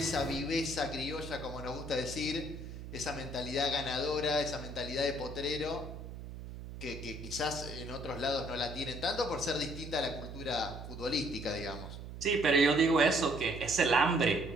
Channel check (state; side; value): noise; right; hum, 10 dB below the sound